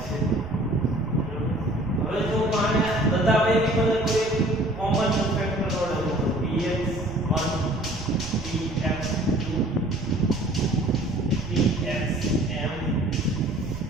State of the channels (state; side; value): noise; right; rumble, 13 dB below the sound